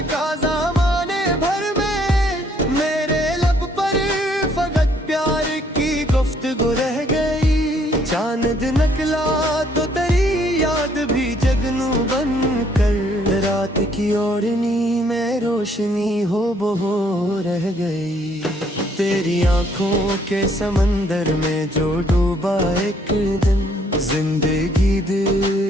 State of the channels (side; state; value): both; normal; correlation 0.66